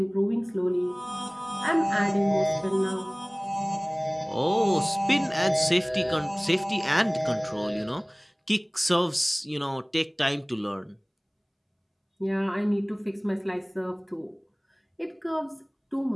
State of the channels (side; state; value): both; identical; correlation 1.00